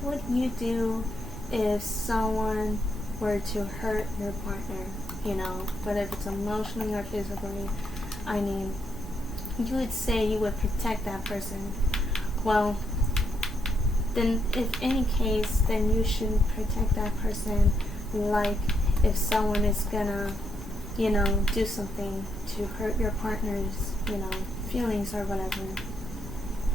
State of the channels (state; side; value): noise; right; rumble, 12 dB below the sound